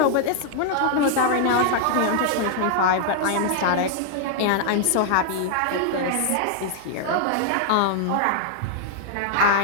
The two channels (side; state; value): both; different; correlation 0.00